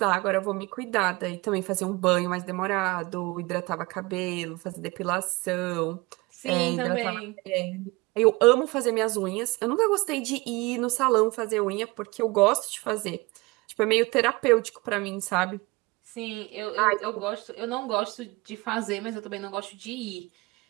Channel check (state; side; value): quieter; left; 23.8 dB